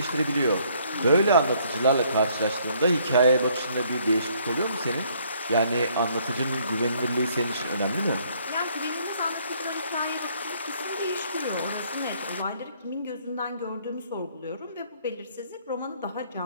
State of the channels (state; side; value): inverted; both; correlation -0.64